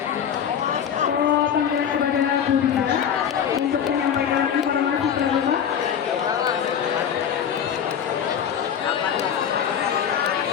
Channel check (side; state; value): right; quieter; 8.4 dB